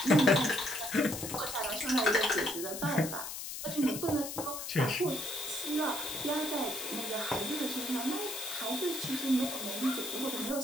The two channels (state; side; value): noise; left; hiss, 7 dB below the sound